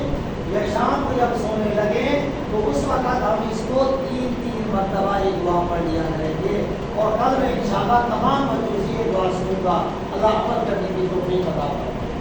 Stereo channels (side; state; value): both; identical; correlation 1.00